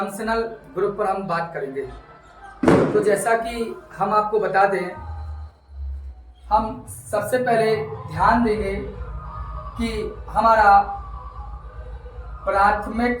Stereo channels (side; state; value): both; identical; correlation 1.00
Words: ग्रुप पर हम बात करेंगे। तो जैसा कि हम आपको बता दें, हम सबसे पहले ध्यान देंगे कि हमारा प्राथमिक